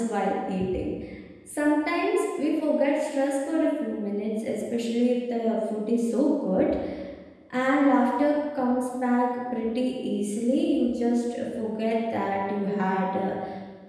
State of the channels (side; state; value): both; identical; correlation 1.00